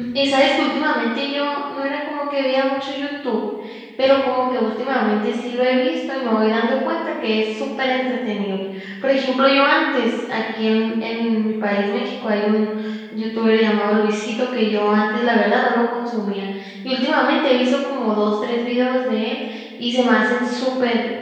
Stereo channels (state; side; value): identical; both; correlation 1.00